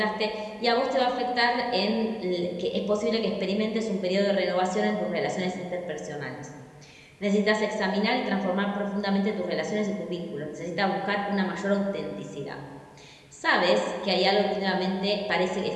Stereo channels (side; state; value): both; identical; correlation 1.00